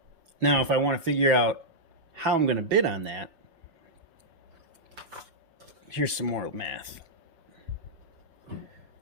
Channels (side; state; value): left; late; 5.9 ms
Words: Now, if I want to figure out how I'm going to bid on that, here's some more math. Let's